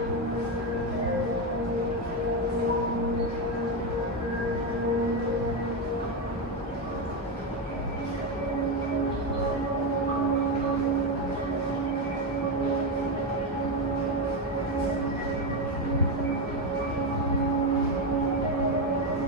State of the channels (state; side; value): normal; both; correlation 0.10